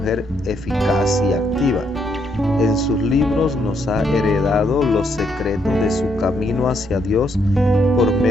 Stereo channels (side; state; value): both; normal; correlation 0.74